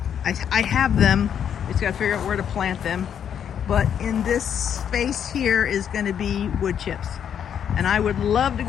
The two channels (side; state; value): right; quieter; 8.6 dB